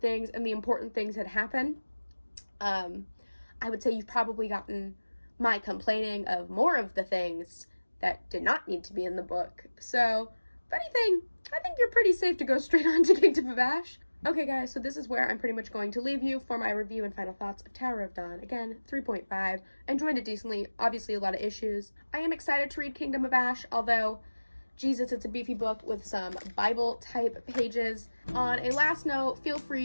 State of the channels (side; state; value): both; inverted; correlation -1.00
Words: and the important things that happen. I would say you've probably gotten my complaining of more of the things that did not need to be in the book. So, if anything, I think you're pretty safe to go straight on to Kingdom of Ash. Okay guys, so this is where I'm pretty much going to leave you for my review and final thoughts of Tower of Dawn. Again, 3.5. Enjoyed it decently. Obviously a lot of issues. I am excited to read Kingdom of Ash, although, Jesus, it's a beefy book with some Bible-type pages. On a last note, feel